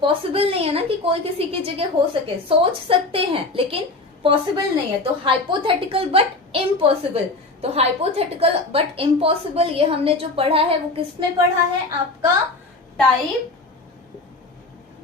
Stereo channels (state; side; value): quieter; right; 3.2 dB